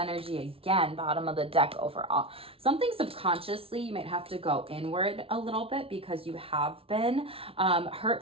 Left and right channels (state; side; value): late; left; 0.27 ms